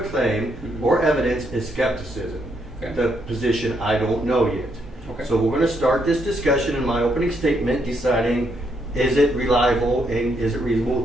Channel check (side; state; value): both; normal; correlation 0.76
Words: or evidence is skepticism. Okay. The position I don't know yet. Okay. So we're going to start this discussion in my opening statement deciding, is it reliable and is it